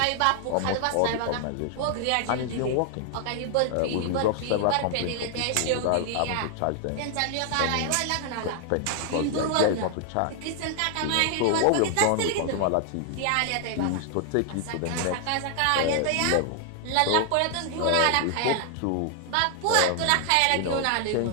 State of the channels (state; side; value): different; both; correlation 0.00